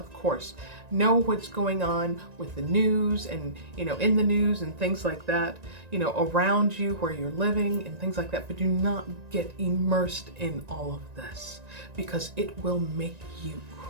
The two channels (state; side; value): late; left; 1.9 ms